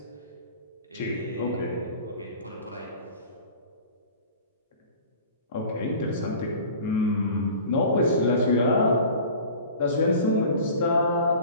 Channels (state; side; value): inverted; both; correlation -0.41